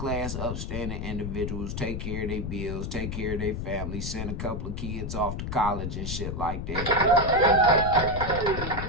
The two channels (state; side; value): noise; left; rumble, 4 dB below the sound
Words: upstanding individuals, take care of their bills, take care of their family, send a couple of kids off to college and shit like that.